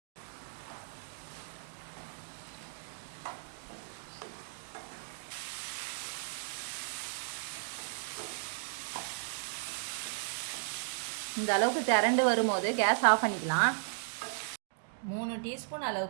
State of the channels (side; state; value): left; silent; digital silence